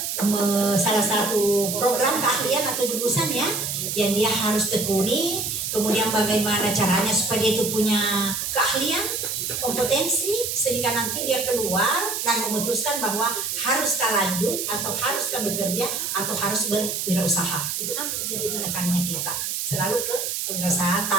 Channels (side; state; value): right; noise; hiss, 2 dB below the sound